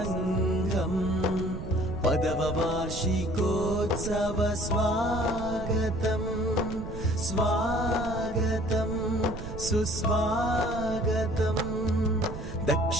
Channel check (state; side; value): noise; right; rumble, 8 dB below the sound